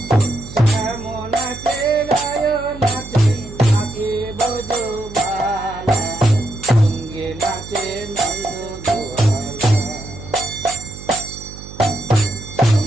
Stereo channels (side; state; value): right; noise; hum, 14 dB below the sound